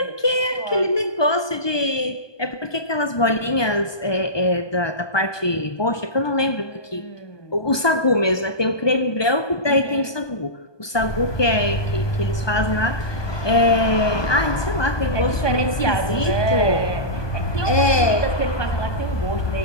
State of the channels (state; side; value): late; right; 1.2 ms